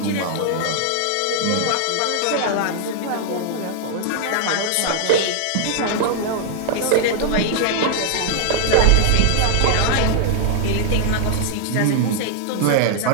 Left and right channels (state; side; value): different; both; correlation -0.01